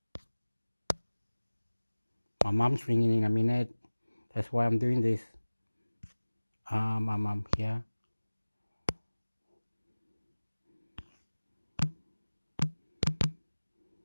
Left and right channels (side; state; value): both; inverted; correlation -1.00